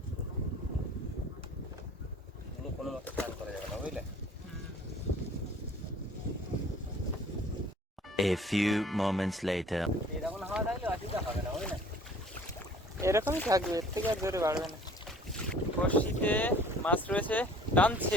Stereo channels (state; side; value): normal; both; correlation 0.51